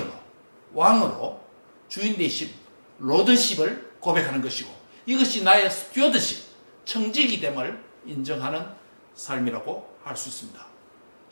왕으로 주인 되심 로드십을 고백하는 것이고 이것이 나의 스튜어드십 청지기 됨을 인정하는 삶이라고 할 수 있습니다.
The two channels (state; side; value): inverted; both; correlation -1.00